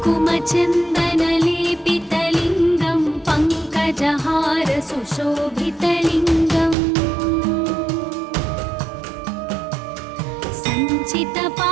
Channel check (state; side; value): drops out; left; at 6.8 s